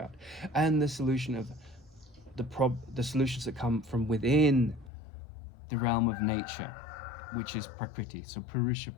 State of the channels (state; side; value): drops out; right; at 4.9 s